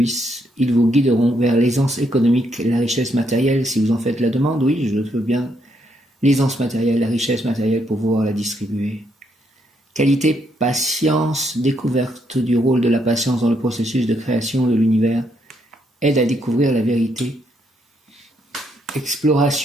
Ils vous guideront vers l'aisance économique, la richesse matérielle, si vous en faites la demande. Oui, je veux bien l'aisance matérielle, la richesse matérielle pour pouvoir la distribuer. Qualité, patience, découverte du rôle de la patience dans le processus de création de l'univers, aide à découvrir la vérité.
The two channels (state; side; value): normal; both; correlation 0.75